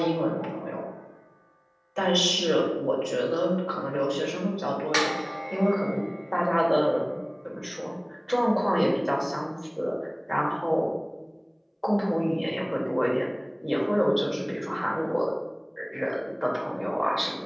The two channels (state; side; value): identical; both; correlation 1.00